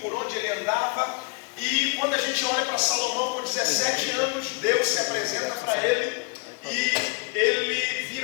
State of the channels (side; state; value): right; quieter; 31.9 dB